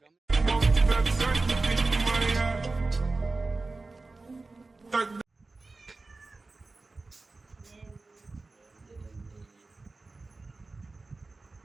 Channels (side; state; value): left; quieter; 3.5 dB